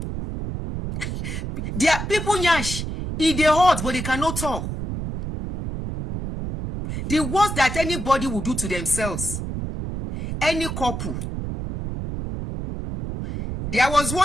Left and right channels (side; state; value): right; noise; rumble, 5 dB below the sound